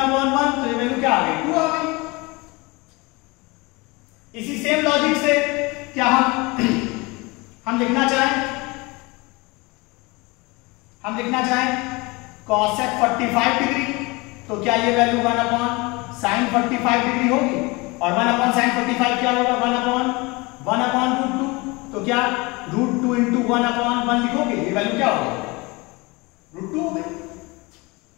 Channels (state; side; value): quieter; right; 25.1 dB